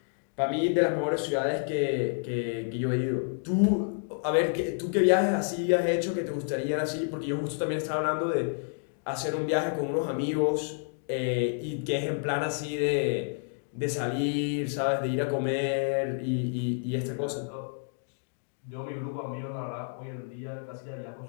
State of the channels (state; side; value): silent; right; digital silence